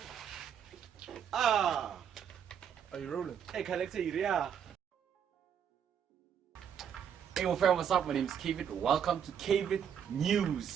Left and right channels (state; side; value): quieter; left; 8.3 dB